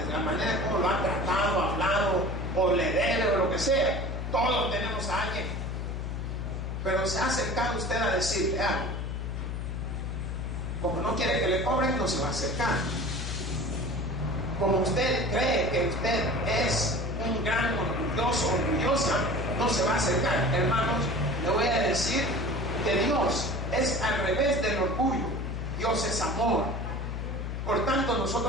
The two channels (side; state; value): left; noise; hum, 4 dB below the sound